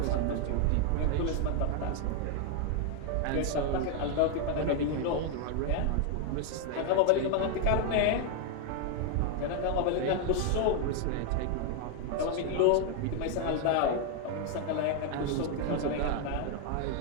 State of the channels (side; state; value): both; different; correlation 0.00